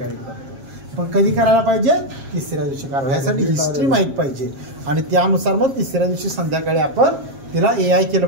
करतो. पण कधी करायला पाहिजे, तिसऱ्या दिवशी करावं. ह्यासाठी हिस्ट्री माहीत पाहिजे आणि त्यानुसार मग तिसऱ्या दिवशी संध्याकाळी आपण तिला AI केलं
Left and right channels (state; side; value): late; left; 7.4 ms